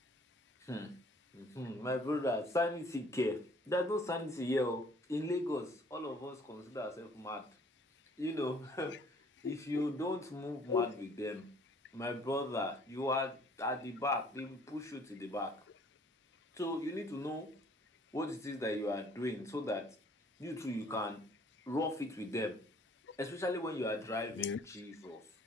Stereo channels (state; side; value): normal; both; correlation 0.57